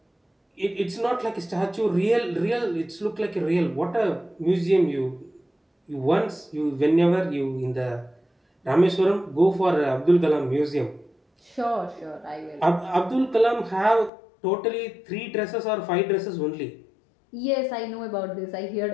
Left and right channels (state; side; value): drops out; right; at 14.1 s